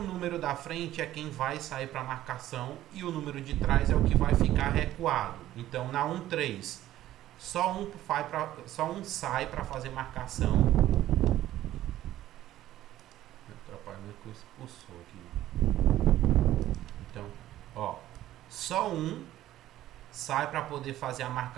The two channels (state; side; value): quieter; left; 13.8 dB